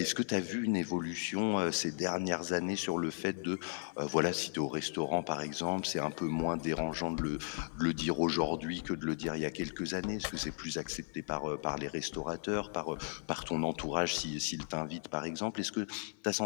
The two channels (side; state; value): right; silent; 54 dB below the other